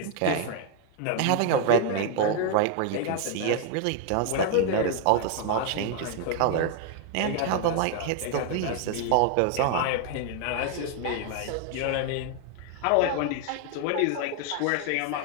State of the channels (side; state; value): both; different; correlation 0.01